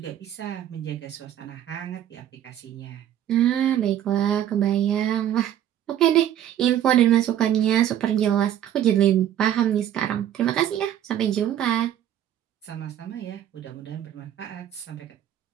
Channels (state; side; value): quieter; left; 11.0 dB